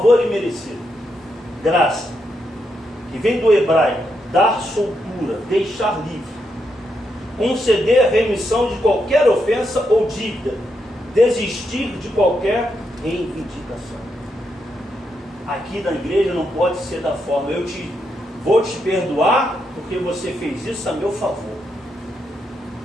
imerecido, graça, que vem do hebraico, dar soltura, deixar livre, conceder a remissão de qualquer ofensa ou dívida, desistir de qualquer reivindicação. Aqui na igreja não pode ser da forma, vou te perdoar porque você fez isso a meu favor,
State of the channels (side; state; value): both; normal; correlation 0.81